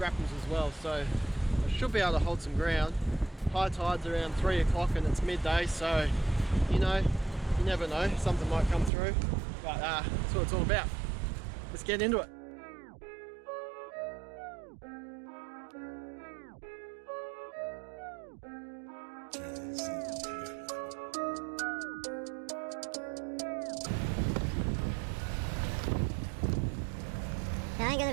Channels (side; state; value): left; drops out; at 8.9 s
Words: as well, so I should be able to hold some ground. High tide's around 3 o'clock and it's midday, so you know, you never know, something might come through, but that's what it's all about. Let's get into it. I ain't gonna